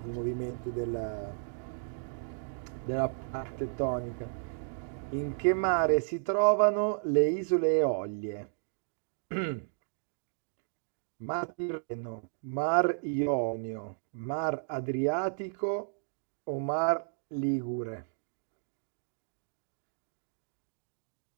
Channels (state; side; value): silent; left; digital silence